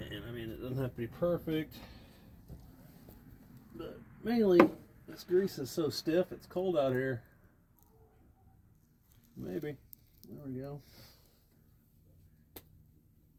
I mean, it doesn't have to be perfect, but mainly this grease is so stiff. It's cold out here. Maybe. There we go.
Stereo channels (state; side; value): identical; both; correlation 1.00